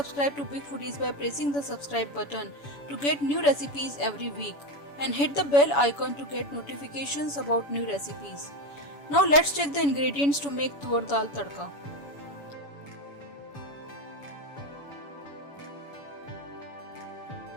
to Big Foodies by pressing the subscribe button to get new recipes every week, and hit the bell icon to get notifications about new recipes. Now let's check the ingredients to make tur dal tadka.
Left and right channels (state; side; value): late; right; 7.0 ms